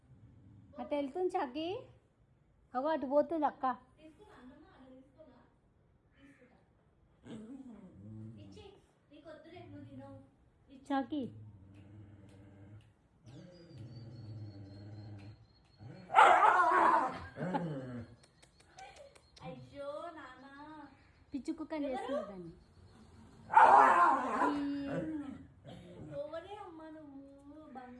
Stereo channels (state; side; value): identical; both; correlation 1.00